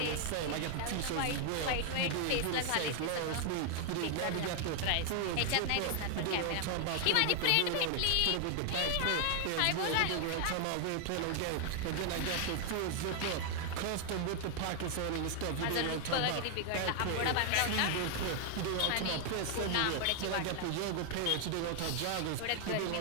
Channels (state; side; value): different; both; correlation 0.00